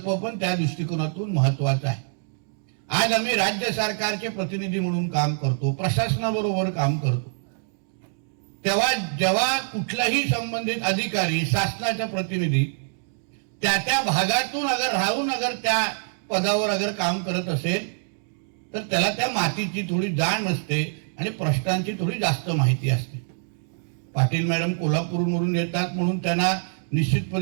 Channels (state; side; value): silent; left; digital silence